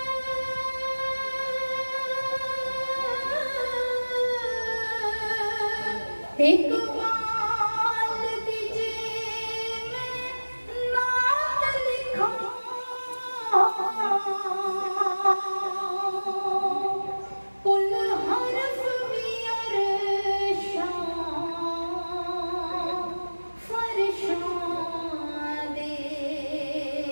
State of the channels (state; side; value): inverted; both; correlation -1.00